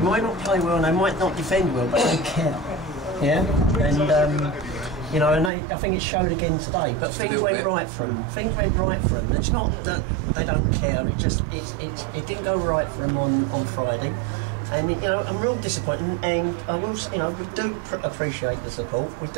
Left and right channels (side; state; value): left; drops out; at 5.5 s